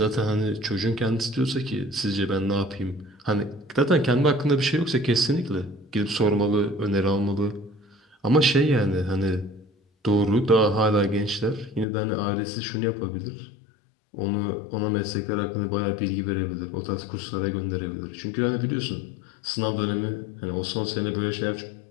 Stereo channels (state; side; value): drops out; right; at 11.9 s